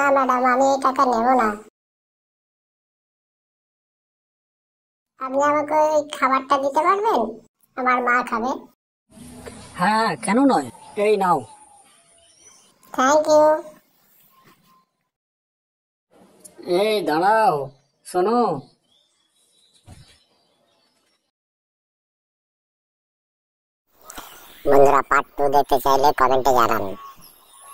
ম্যাডাম, আমি এই টাকা নেব না। আপনি আমাকে ওই খাবারটা দিতে পারবেন? আমার মা খাবে। হ্যাঁ, কেন নয়, এই নাও। Thank you. এই দাঁড়াও, শোনো। বন্ধুরা, পার্ট 2 দেখতে চাইলে কমেন্টে জানান।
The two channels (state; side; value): identical; both; correlation 1.00